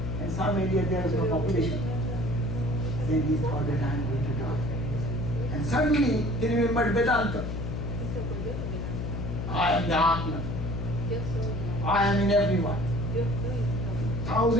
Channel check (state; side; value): noise; left; hum, 3 dB below the sound